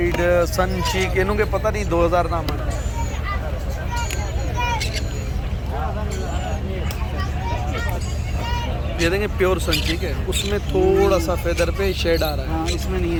सन चीक, इन्हों के पता नहीं 2000 नाम है। ये देंगे प्योर सन चीक है, उसमें थोड़ा सा फेदर पे शेड आ रहा है। हाँ इसमें नहीं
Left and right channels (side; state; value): both; identical; correlation 1.00